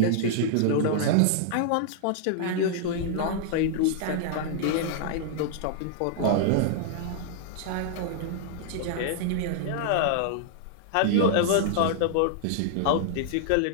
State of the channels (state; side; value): different; both; correlation -0.01